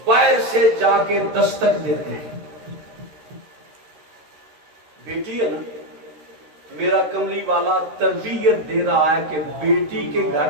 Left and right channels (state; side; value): late; left; 13 ms